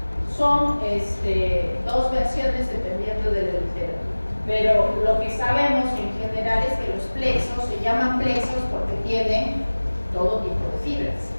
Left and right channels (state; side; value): inverted; both; correlation -1.00